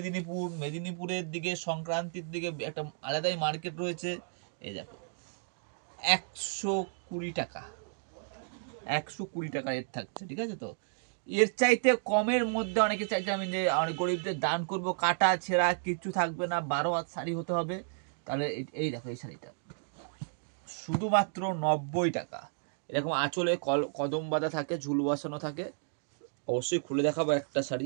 মেদিনীপুরের দিকে, সংক্রান্তির দিকে একটা আলাদাই মার্কেট রয়েছে। এই দেখো 120 টাকা, 120 টাকা রেট থাকছে, ঠিক আছে? তো এর চাইতে কমের মধ্যে অনেকে চাইছে আমি যে অনেক গরিবদের দান করব, কাটা ছেঁড়া কিছু থাকবে না, 12 হাত শাড়ি হতে হবে, তাহলে এই দেখো এই শাড়িটা শুধুমাত্র 90 টাকা। এরকম আঁচলে কদম বাঁধা থাকে, ঝুল বসানো থাকে। অবশ্যই খুলে দেখাবো একটা শাড়ি।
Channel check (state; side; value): silent; left; digital silence